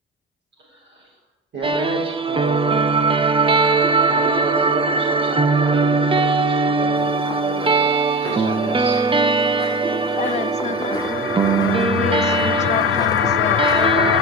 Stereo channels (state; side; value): normal; both; correlation 0.26